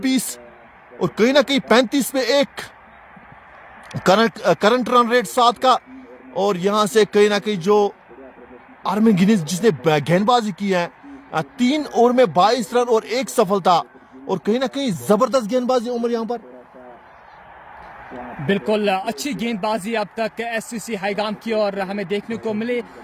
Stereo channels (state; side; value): identical; both; correlation 1.00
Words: 20, और कहीं ना कहीं 35 में 1 करंट रन रेट 7 का। और यहां से कहीं ना कहीं जो आर्मिन गिनीज जिसने गेंदबाजी की है, 3 ओवर में 22 रन और 1 सफलता, और कहीं ना कहीं जबरदस्त गेंदबाजी उमर यहां पर। बिल्कुल अच्छी गेंदबाजी अब तक एससीसी हाईगाम की और हमें देखने को मिली,